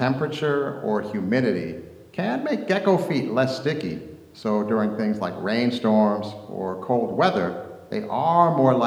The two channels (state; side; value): identical; both; correlation 1.00